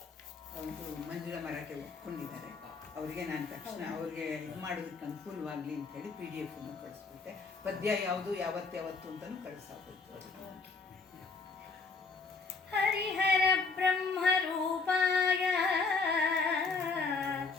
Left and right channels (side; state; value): right; quieter; 4.4 dB